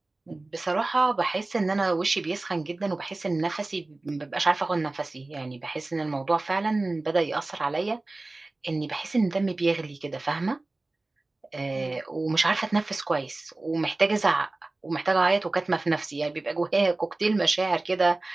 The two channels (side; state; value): left; quieter; 3.0 dB